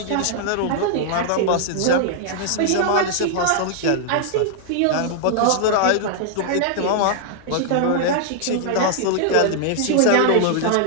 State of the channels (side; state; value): both; different; correlation -0.01